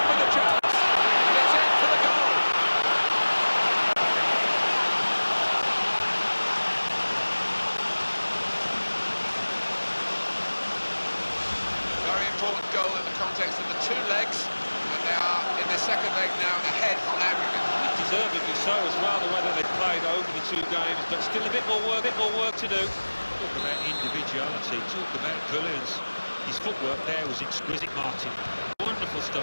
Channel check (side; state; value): both; inverted; correlation -1.00